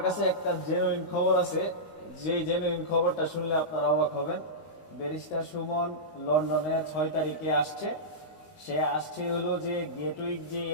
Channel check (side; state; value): right; late; 19 ms